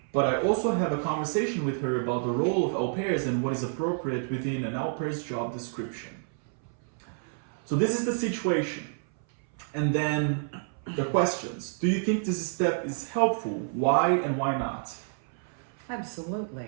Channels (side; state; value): left; silent; 59 dB below the other